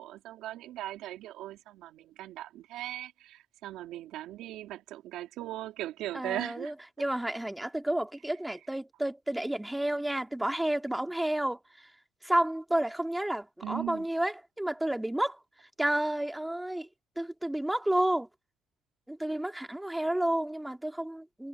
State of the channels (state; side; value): normal; both; correlation 0.96